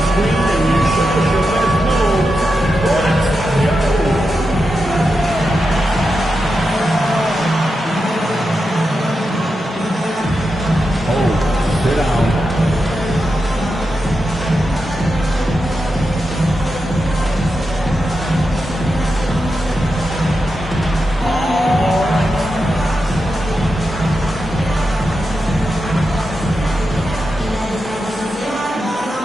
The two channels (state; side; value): normal; both; correlation 0.88